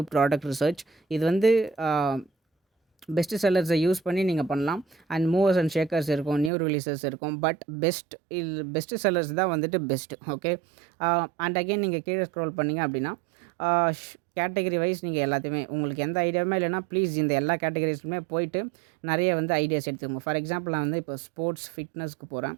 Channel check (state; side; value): drops out; left; at 6.5 s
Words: product research. இது வந்து பெஸ்ட் செல்லர்ஸை யூஸ் பண்ணி நீங்கள் பண்ணலாம். அண்ட் மூவர்ஸ் அண்ட் ஷேக்கர்ஸ் இருக்கும், நியூ ரிலீசஸ் இருக்கும். பட் பெஸ்ட் செல்லர்ஸ் தான் வந்துட்டு பெஸ்ட்டு. அண்ட் அகெயின் நீங்கள் கீழே ஸ்க்ரோல் பண்ணிங்க அப்படின்னா கேட்டகரி வைஸ் நீங்கள் எல்லாத்தையுமே உங்களுக்கு எந்த ஐடியாவுமே இல்லைனா ப்ளீஸ் இந்த எல்லா கேட்டகரிஸ்லுமே போயிட்டு நிறைய வந்து ஐடியாஸ் எடுத்துக்கோங்க. ஃபார் எக்ஸாம்பிள் நான் வந்து இப்போ ஸ்போர்ட்ஸ் ஃபிட்னஸ்க்கு போகிறேன்.